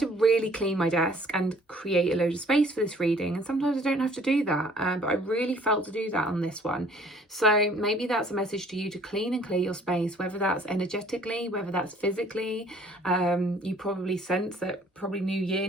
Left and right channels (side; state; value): both; normal; correlation 0.57